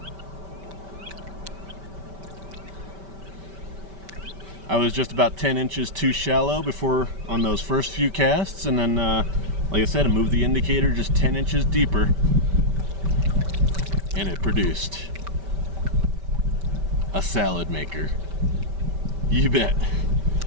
I was just about 10 inches too shallow before on those first few casts, and then like I said, I moved the indicator just 10 inches deeper and it produced a salad maker. You bet.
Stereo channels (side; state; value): left; late; 5.1 ms